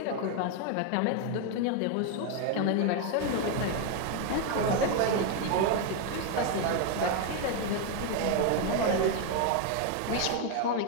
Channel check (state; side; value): different; both; correlation 0.01